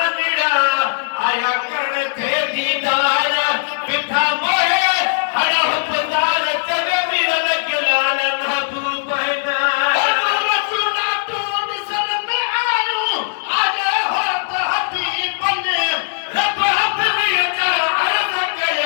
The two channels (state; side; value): silent; right; digital silence